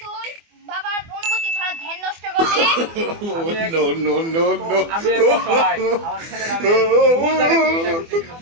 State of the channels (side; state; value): left; late; 24 ms